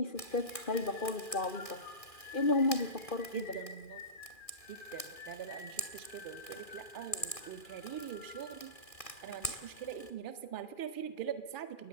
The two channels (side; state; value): right; late; 2.4 ms